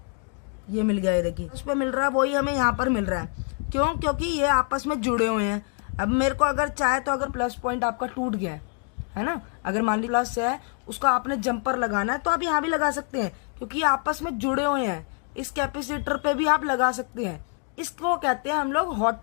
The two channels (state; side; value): quieter; right; 39.3 dB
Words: ये मिल गया, ये देखिए उस पर मिल रहा है, वही हमें यहाँ पर मिल रहा है। क्यों? क्योंकि ये आपस में जुड़े हुए हैं। अब मेरे को अगर चाहे तो अगर प्लस पॉइंट आपका टूट गया है ना, अगर मान ली प्लस है, उसका आपने जंपर लगाना है तो आप यहाँ भी लगा सकते हैं, क्योंकि ये आपस में जुड़े हुए हैं। इस कैपेसिटर पे भी आप लगा सकते हैं। इसको कहते हैं हम लोग हॉट